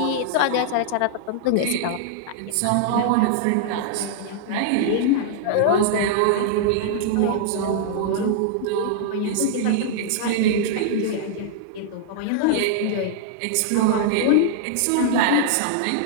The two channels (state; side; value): different; both; correlation -0.01